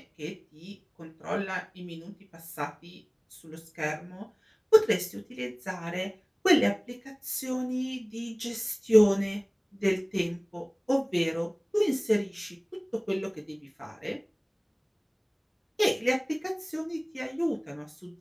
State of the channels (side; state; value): both; identical; correlation 1.00